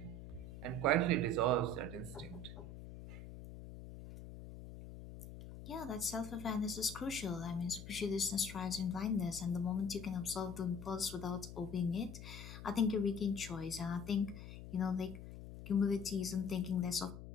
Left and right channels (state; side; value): noise; left; hum, 12 dB below the sound